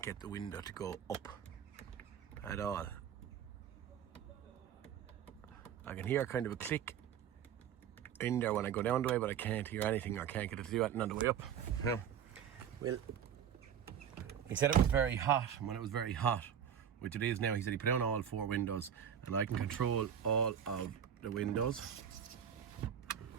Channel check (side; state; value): left; quieter; 8.8 dB